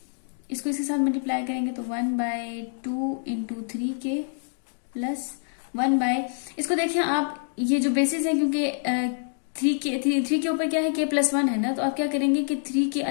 इसको इसके साथ मल्टीप्लाई करेंगे तो 1/2 into 3k + इसको देखिए आप, ये जो बेसिस है, क्योंकि 3 के ऊपर क्या है, k+1 है ना, तो आप क्या करेंगे कि 3k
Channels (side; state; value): right; silent; digital silence